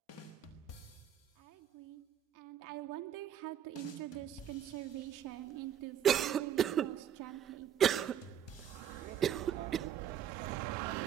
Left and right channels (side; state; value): left; quieter; 9.8 dB